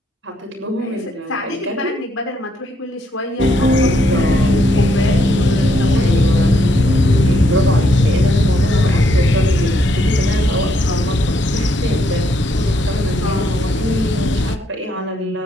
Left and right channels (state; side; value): normal; both; correlation 0.74